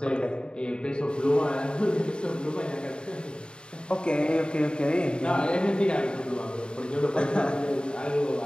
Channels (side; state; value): right; late; 0.051 ms